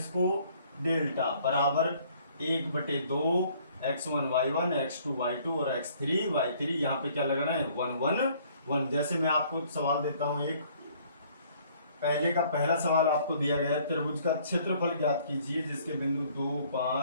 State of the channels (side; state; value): both; inverted; correlation -0.59